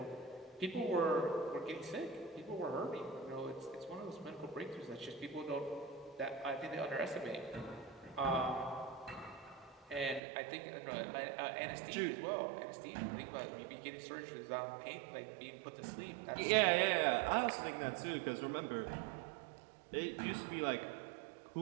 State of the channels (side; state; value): left; drops out; at 10.2 s